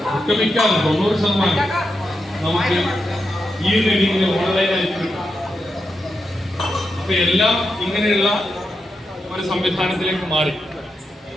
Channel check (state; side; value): normal; both; correlation 0.86